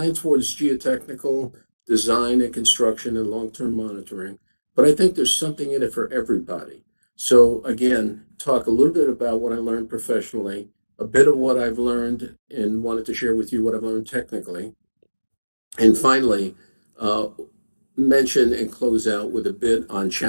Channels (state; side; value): inverted; both; correlation -1.00